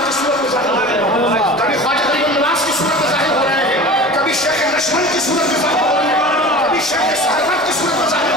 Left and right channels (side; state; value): left; noise; rumble, 30 dB below the sound